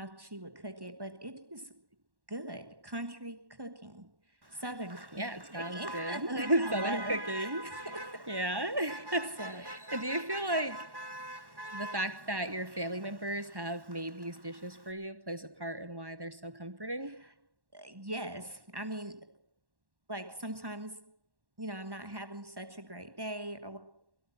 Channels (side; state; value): left; late; 1.1 ms